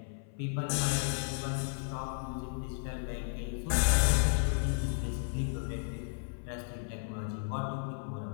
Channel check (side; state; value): right; silent; 55 dB below the other